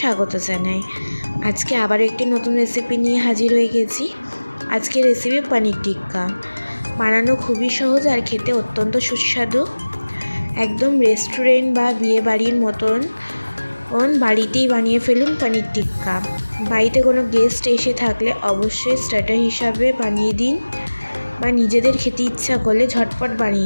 জানাই। আজকে আবার একটি নতুন রেসিপি নিয়ে হাজির হয়ে গেছি। আজকের রেসিপি পনির টিক্কা। বানানো খুবই সহজ আর খেতে অত্যন্ত সুস্বাদু। একদম রেস্টুরেন্ট বা বিয়ে বাড়ির মতন বাড়িতেই বানিয়ে ফেলুন পনির টিক্কা। বাড়িতে কোনো গেস্ট এসে থাকলে অবশ্যই স্টার্টার হিসাবে বানিয়ে দিন, বা নিজেদের খেতে ইচ্ছা করলে ঝটপট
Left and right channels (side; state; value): both; inverted; correlation -1.00